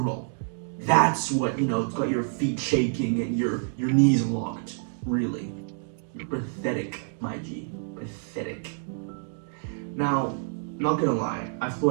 That's what, it's got your feet shaking and your knees locked. Really. You're pathetic, my G. Pathetic. Now, not gonna lie, I've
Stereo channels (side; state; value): left; silent; 60 dB below the other